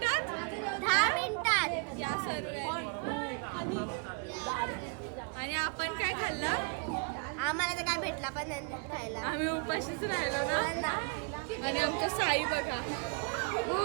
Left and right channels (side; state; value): left; quieter; 35.1 dB